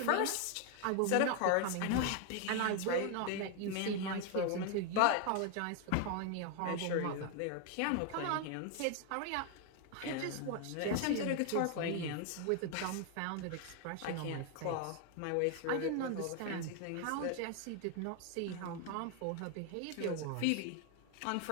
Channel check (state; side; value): different; both; correlation 0.01